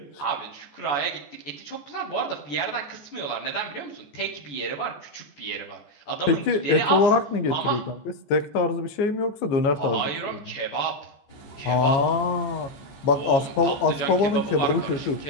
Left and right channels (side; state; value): right; late; 14 ms